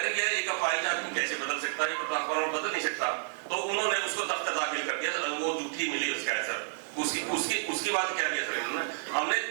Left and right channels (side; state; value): left; silent; 57 dB below the other